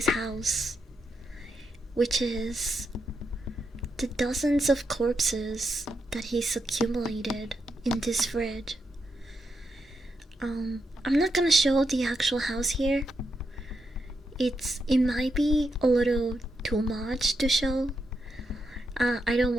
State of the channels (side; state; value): both; normal; correlation 0.83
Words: house, which is the dozens of corpses that he's accumulated in this fridge. I'm not gonna show the actual house here. It might be a little too much to show. I don't